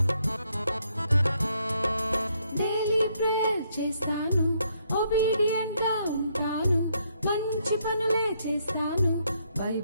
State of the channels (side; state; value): both; inverted; correlation -0.72